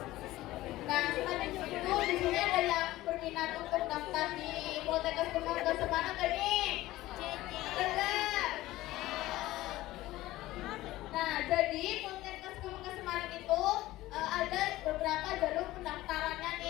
Nah, selain itu di sini ada yang berminat untuk daftar di Poltekkes Kemangga Semarang gak nih? Enggak. Nah, jadi Poltekkes Kemangga Semarang itu ada beberapa jalur pendaftarannya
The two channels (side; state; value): right; quieter; 16.8 dB